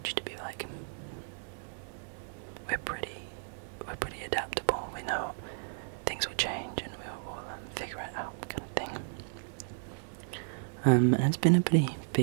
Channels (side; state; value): left; silent; digital silence